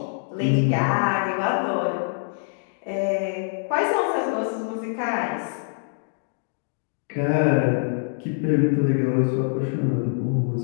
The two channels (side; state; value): right; silent; digital silence